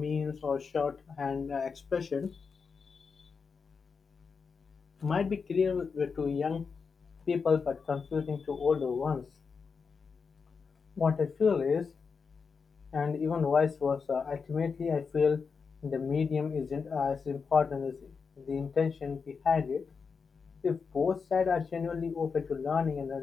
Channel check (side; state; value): right; quieter; 5.4 dB